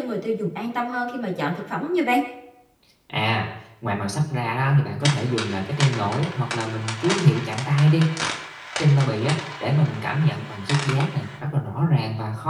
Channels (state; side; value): identical; both; correlation 1.00